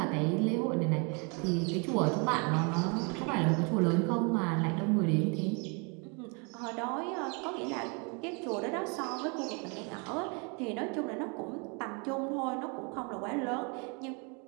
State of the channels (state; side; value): quieter; left; 33.8 dB